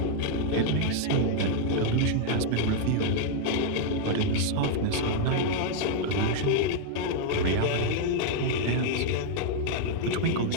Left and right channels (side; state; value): both; different; correlation -0.01